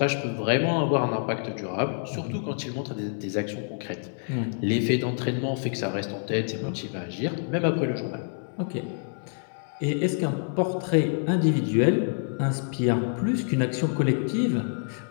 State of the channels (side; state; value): right; silent; 60 dB below the other